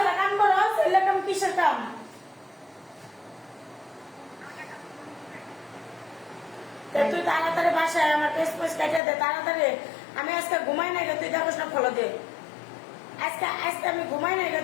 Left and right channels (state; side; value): drops out; right; at 9.0 s